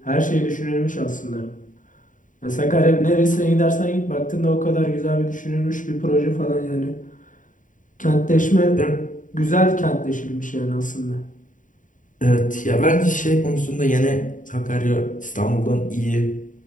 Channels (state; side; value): late; right; 0.38 ms